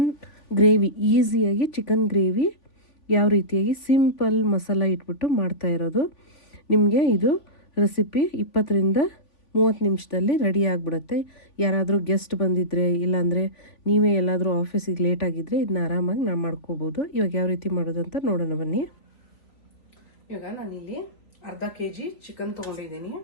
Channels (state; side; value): late; right; 3.5 ms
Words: gravy, ಈಸಿಯಾಗಿ ಚಿಕನ್ ಗ್ರೇವಿ ಯಾವ ರೀತಿಯಾಗಿ ಸಿಂಪಲ್ ಮಸಾಲ ಇಟ್ಬಿಟ್ಟು ಮಾಡ್ತಾ ಇರೋದು. ನಿಮಗೆ ಇದು ರೆಸಿಪಿ 20ರಿಂದ 30 ನಿಮಿಷದಲ್ಲಿ ರೆಡಿ ಆಗಿಬಿಡುತ್ತೆ. ಯಾರಾದರೂ ಗೆಸ್ಟ್ ಬಂದಿದ್ದರೆ, ಇಲ್ಲಾಂದರೆ ನೀವೇ ಎಲ್ಲಾದರೂ ಆಫೀಸಿಗೆ ಲೇಟ್ ಆಗಿದ್ದರೆ ಇದನ್ನ ಆರಾಮಾಗಿ ನಾವು ಮಾಡ್ಕೋಬೋದು. ಇವಾಗ ಯಾವ ರೀತಿ ಮಾಡೋದು ಅಂತ ನೋಡೋಣ ಬನ್ನಿ. ಇವಾಗ ನಾನಿಲ್ಲಿ ಅರ್ಧ kg ಚಿಕನ್ ತೊಗೊಂಡಿದ್ದೀನಿ.